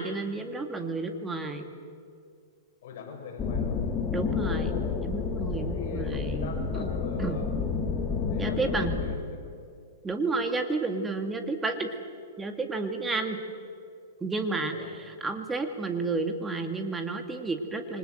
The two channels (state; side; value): normal; both; correlation 0.31